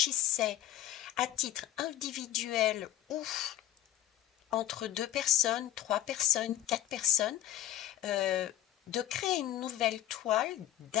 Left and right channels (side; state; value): right; quieter; 12.9 dB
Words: à titre individuel ou entre 2 personnes, 3 personnes, 4 personnes, de créer une nouvelle toile